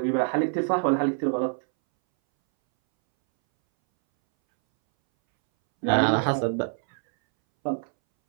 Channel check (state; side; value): silent; left; 62 dB below the other